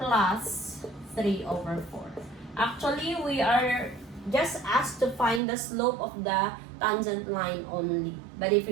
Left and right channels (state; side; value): drops out; left; at 5.4 s